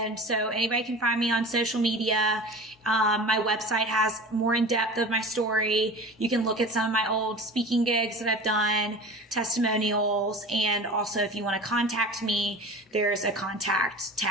so anybody can find me on social media. My website has more in depth of my story. You can look at some of my old speaking gigs that I've done, testimonials, and also if you want to contact me, there's a contact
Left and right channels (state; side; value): normal; both; correlation 0.36